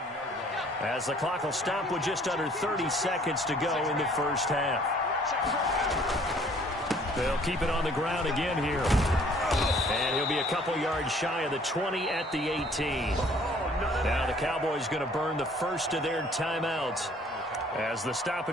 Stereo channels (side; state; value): both; normal; correlation 0.57